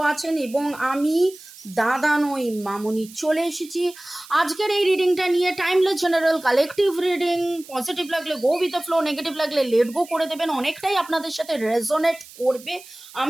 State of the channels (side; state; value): right; noise; hiss, 19 dB below the sound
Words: আছেন এবং আমি দাদা নই মামুনি চলে এসেছি আজকের এই রিডিংটা নিয়ে। Timeless general collective reading. Positive লাগলে go with the flow, negative লাগলে লেট গো করে দেবেন। অনেকটাই আপনাদের সাথে রেজোনেট করবে